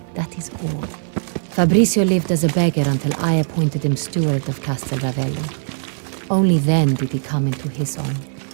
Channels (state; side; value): silent; left; digital silence